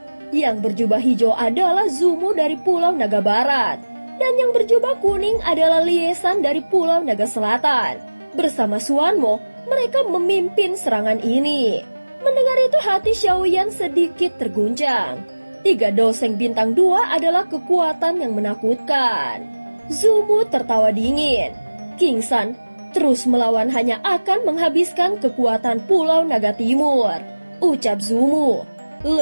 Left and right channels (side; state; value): both; inverted; correlation -1.00